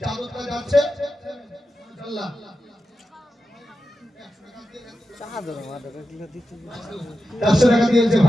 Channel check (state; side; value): normal; both; correlation 0.91